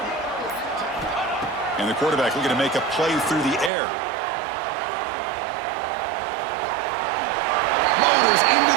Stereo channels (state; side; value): drops out; left; at 3.7 s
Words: And the quarterback looking to make a play through the air. Motors into